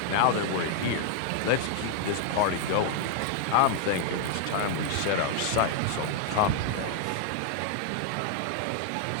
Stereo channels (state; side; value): different; both; correlation 0.00